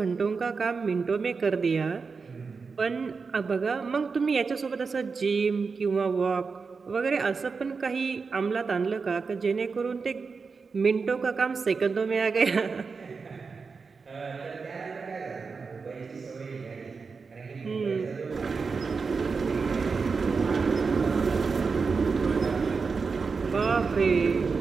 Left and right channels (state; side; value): quieter; left; 4.9 dB